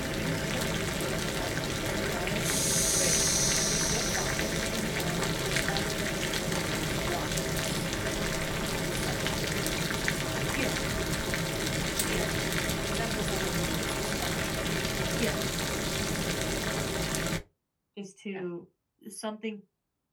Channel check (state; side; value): identical; both; correlation 1.00